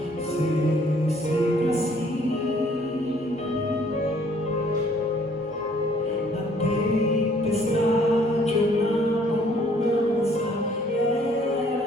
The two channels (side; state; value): both; normal; correlation 0.61